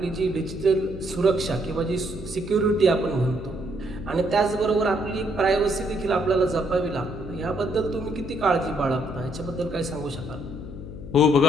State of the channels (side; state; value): left; noise; hum, 11 dB below the sound